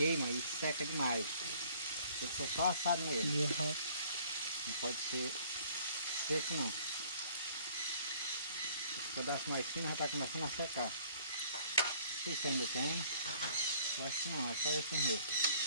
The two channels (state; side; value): inverted; both; correlation -0.56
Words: e seca demais. Tem que ser só assado mesmo. Não pode ser seco não. Esse pedaço mais fino já está começando a secar. Não sei se ainda tem. Eu acho que não, é só esse mesmo.